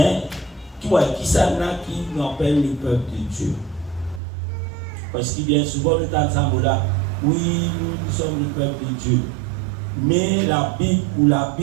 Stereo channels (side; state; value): left; drops out; at 4.2 s